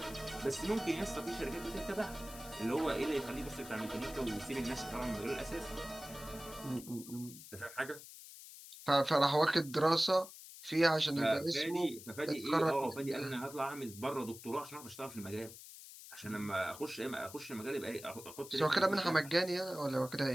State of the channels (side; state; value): left; noise; hiss, 15 dB below the sound